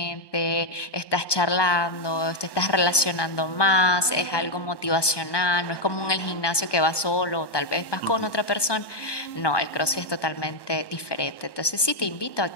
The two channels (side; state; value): right; late; 1.2 ms